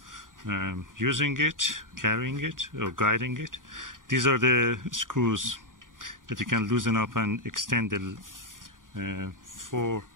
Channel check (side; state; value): left; late; 0.89 ms